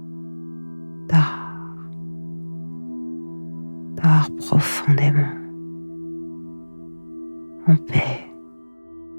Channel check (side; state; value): both; inverted; correlation -1.00